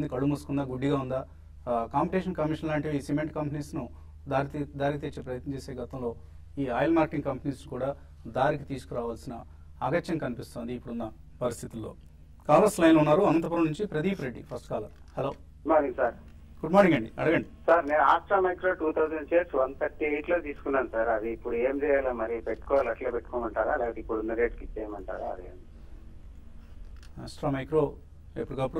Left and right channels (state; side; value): identical; both; correlation 1.00